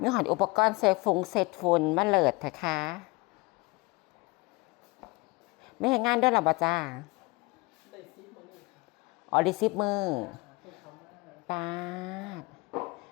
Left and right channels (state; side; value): quieter; right; 25.4 dB